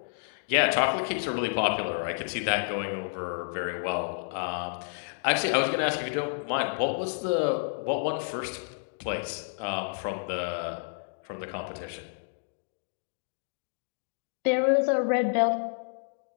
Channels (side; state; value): right; silent; digital silence